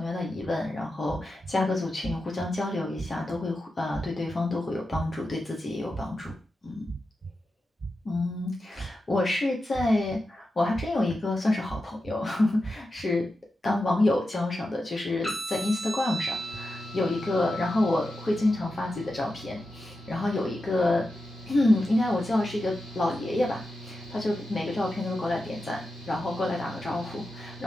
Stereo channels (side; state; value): both; normal; correlation 0.90